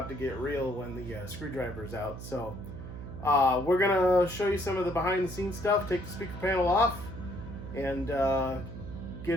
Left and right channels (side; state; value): right; noise; hum, 10 dB below the sound